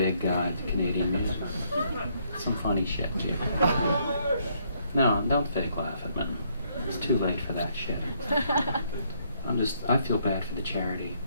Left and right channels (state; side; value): inverted; both; correlation -0.71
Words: Guide to Canadian Music. Some funny shit, people. No, don't fake laugh at me. It's too late for that shit. I feel bad for the charity